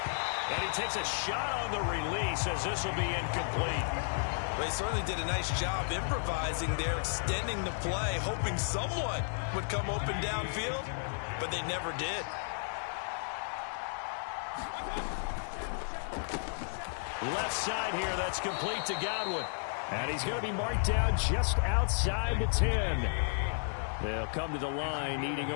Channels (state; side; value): silent; right; 56 dB below the other